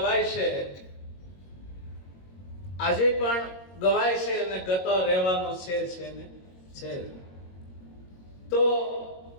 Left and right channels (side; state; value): right; late; 22 ms